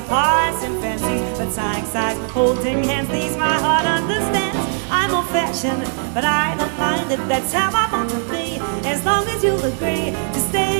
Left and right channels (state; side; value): silent; left; digital silence